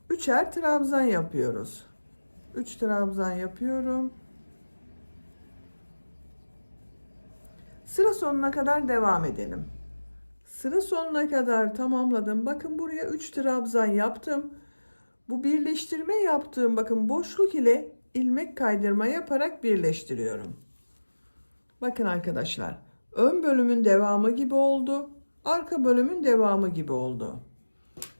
3'er trabzan yapıyoruz. 3 trabzan yapıyorum. Sıra sonuna kadar devam edelim. Sıra sonuna kadar tamamladım. Bakın buraya 3 trabzan yaptım. Bu birleştirme yaptığım bakın boşluk ile ilmek kaydırma yaparak birleştiriyorum. Bakın arkadaşlar, ön bölümün devamı gibi oldu. Arka bölümün devamı gibi oldu.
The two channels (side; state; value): both; inverted; correlation -1.00